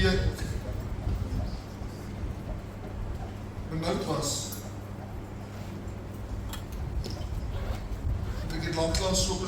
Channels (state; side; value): identical; both; correlation 1.00